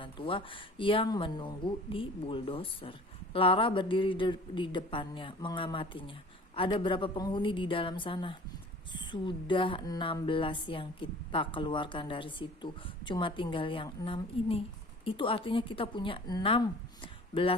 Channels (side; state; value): both; normal; correlation 0.45